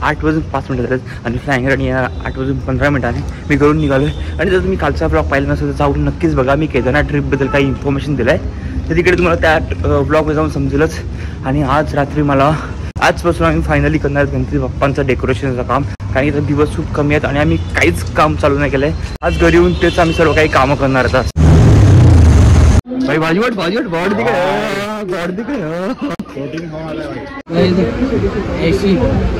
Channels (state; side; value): identical; both; correlation 1.00